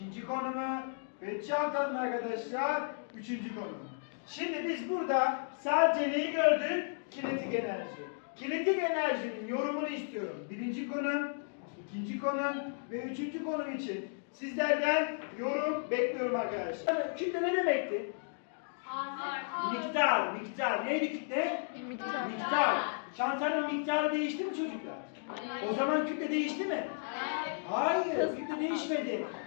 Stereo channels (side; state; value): right; silent; digital silence